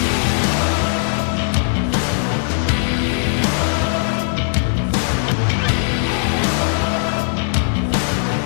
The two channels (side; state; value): right; silent; digital silence